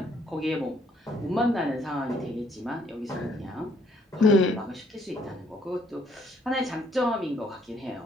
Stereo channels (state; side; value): normal; both; correlation 0.66